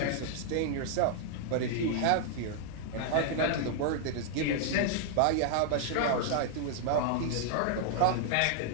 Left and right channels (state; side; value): different; both; correlation -0.01